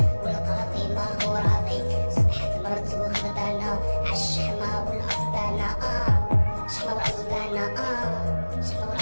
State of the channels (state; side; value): inverted; both; correlation -1.00